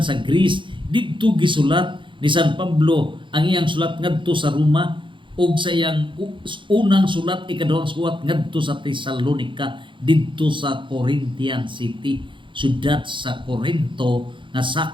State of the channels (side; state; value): left; late; 0.24 ms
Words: Greece, didto gisulat ni San Pablo ang iyang sulat ngadto sa Roma ug sa iyang unang sulat, ikaduhang sulat ngadto sa Tesalonica, didto sa Corinthian City, syudad sa Corinto nga